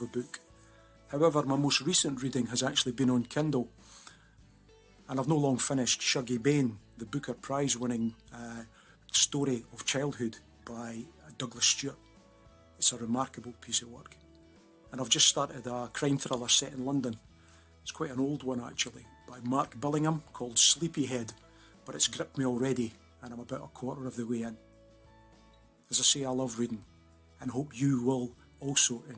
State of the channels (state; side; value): identical; both; correlation 1.00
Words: a book. However, my most recent reading has actually been on Kindle, and I've no long finished Shuggie Bain, the Booker Prize-winning story of childhood by Douglas Stewart. It's a remarkable piece of work. And I've just started a crime thriller set in London. It's quite an old one actually, by Mark Billingham, called Sleepyhead, but it's gripped me already and I'm about a quarter of the way in. As I say, I love reading and hope you will also